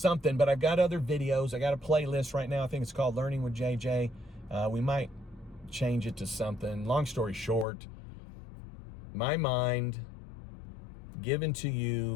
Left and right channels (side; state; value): right; drops out; at 7.7 s